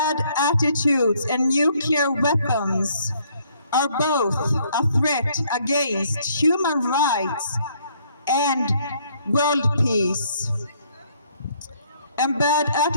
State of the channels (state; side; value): inverted; both; correlation -0.66